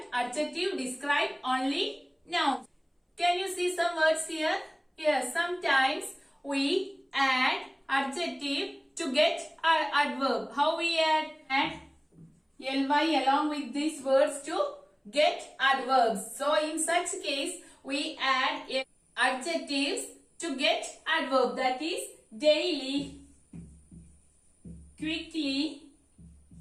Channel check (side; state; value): both; identical; correlation 1.00